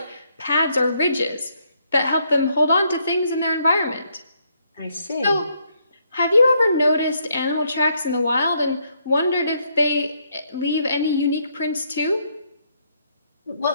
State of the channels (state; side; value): inverted; both; correlation -0.73